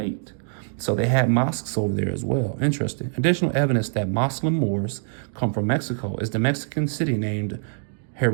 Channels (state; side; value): silent; left; digital silence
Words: So they had mosques over there as well. Interesting. Additional evidence that Moslem Moors come from Mexico is the Mexican city named